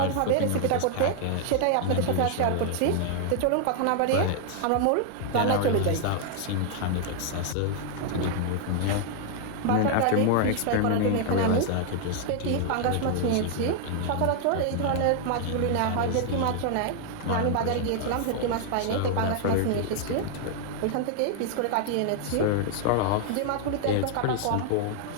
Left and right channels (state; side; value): different; both; correlation 0.00